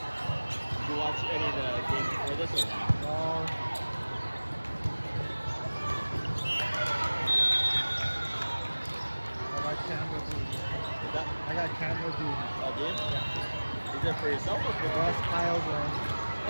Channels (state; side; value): inverted; both; correlation -1.00